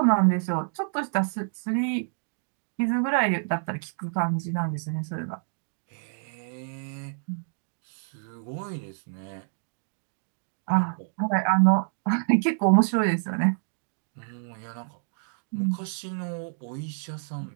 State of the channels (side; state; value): left; silent; digital silence